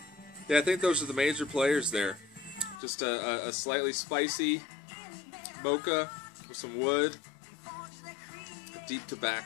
Yeah, I think those are the major players there. Just a slightly spicy mocha with some wood, deep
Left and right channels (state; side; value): drops out; right; at 2.8 s